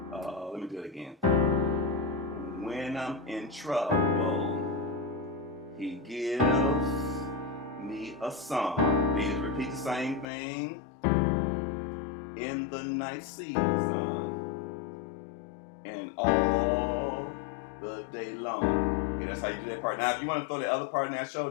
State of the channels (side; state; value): right; drops out; at 10.2 s